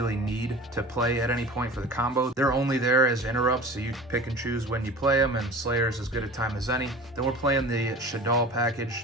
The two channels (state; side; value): normal; both; correlation 0.37